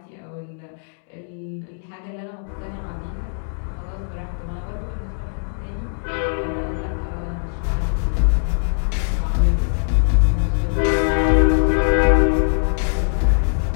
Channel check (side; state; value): right; silent; digital silence